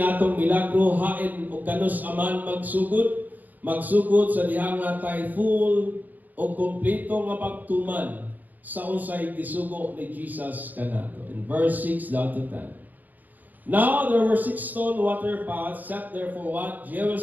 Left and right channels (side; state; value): left; late; 0.083 ms